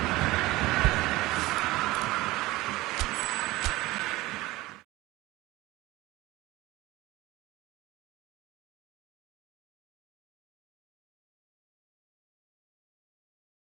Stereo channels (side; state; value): left; quieter; 19.2 dB